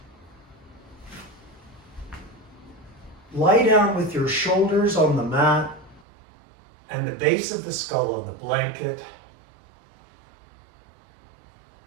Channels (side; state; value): left; drops out; at 6.0 s